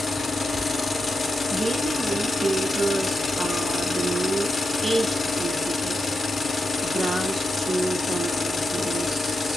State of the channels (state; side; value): normal; both; correlation 0.88